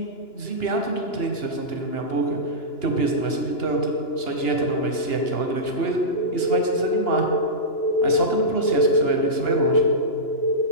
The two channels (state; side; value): late; right; 2.9 ms